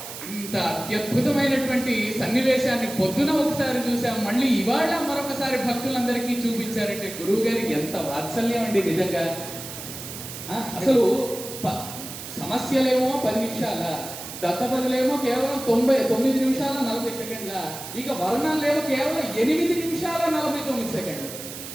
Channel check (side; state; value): right; noise; hiss, 10 dB below the sound